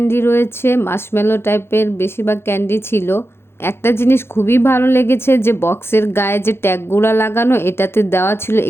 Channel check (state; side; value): late; right; 0.12 ms